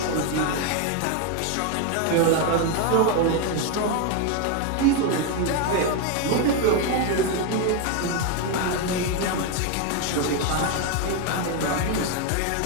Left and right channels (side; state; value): both; different; correlation 0.02